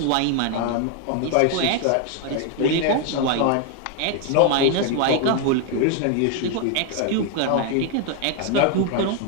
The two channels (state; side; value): different; both; correlation 0.00